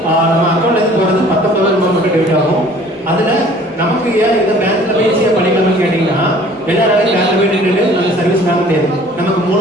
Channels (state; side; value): normal; both; correlation 0.51